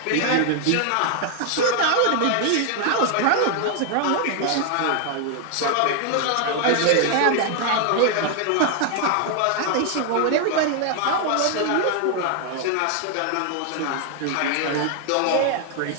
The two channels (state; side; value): different; both; correlation 0.00